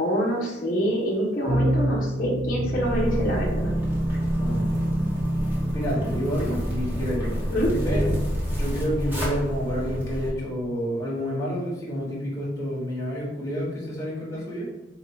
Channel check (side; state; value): both; normal; correlation 0.74